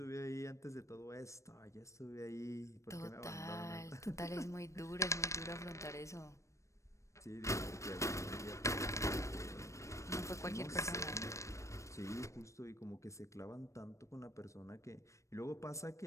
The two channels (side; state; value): right; late; 0.15 ms